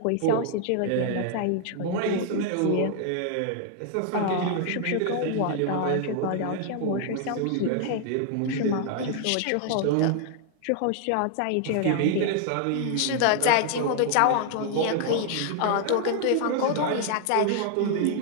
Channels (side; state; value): both; different; correlation 0.00